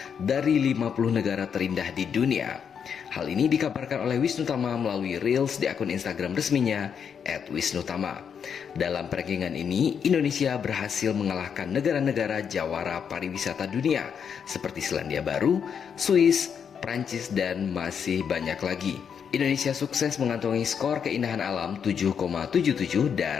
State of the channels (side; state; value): right; quieter; 7.3 dB